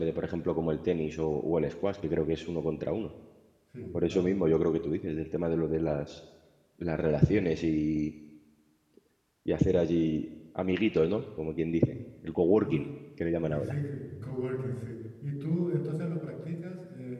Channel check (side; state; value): both; identical; correlation 1.00